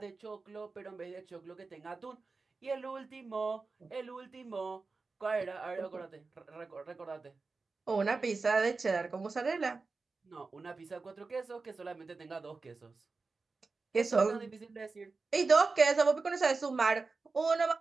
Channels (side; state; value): left; quieter; 4.1 dB